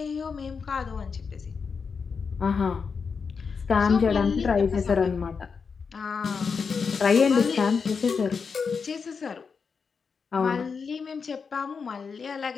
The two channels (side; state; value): right; quieter; 5.5 dB